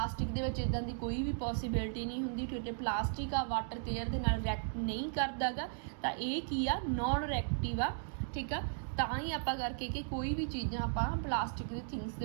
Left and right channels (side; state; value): left; silent; digital silence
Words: ਦੇ ਵਿੱਚ ਇਦਾਂ ਦੀ ਕੋਈ ਵੀ ਪੋਸੀਬਿਲਿਟੀ ਨਹੀਂ ਹੁੰਦੀ, ਕਿਉਂਕਿ ਪਲਾਸਟਿਕ ਆ ਵਾਟਰ ਤੇ ਏਅਰ ਦੇ ਨਾਲ ਰਿਐਕਟ ਨਹੀਂ ਕਰਦਾ ਗਾ, ਤਾਂ ਇਹ ਕੀ ਆ ਨੋਨ ਰਿਐਕਟਿਵ ਆ, ਠੀਕ ਆ। ਤਾਂ ਹੀ ਆਪਾਂ ਕਰਕੇ ਕਿ ਕੋਈ ਵੀ ਚੀਜ਼ਾਂ ਆਪਾਂ ਪਲਾਸਟਿਕ ਦੇ ਥਿੰਗਸ